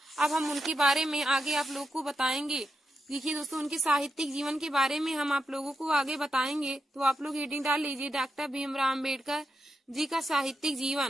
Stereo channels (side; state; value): both; normal; correlation 0.86